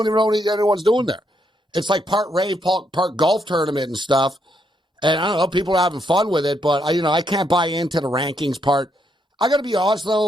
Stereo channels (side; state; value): both; normal; correlation 0.76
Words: even know what anyone's doing there. It's like part rave, part golf tournament and stuff. And I don't know, people are having fun with it, but I can't buy into the rankings part. I got to be honest,